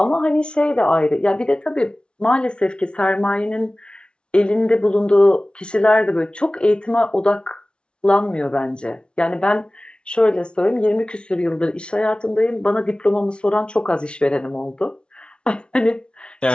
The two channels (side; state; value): right; late; 0.057 ms